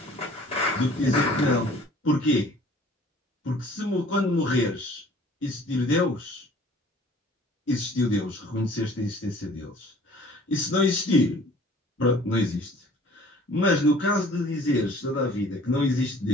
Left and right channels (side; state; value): both; normal; correlation 0.51